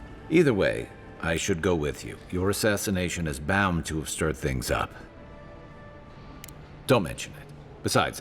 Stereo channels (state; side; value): identical; both; correlation 1.00